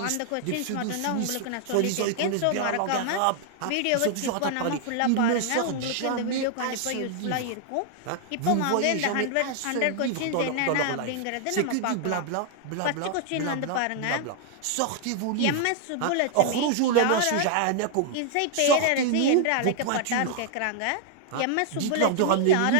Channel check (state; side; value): different; both; correlation 0.00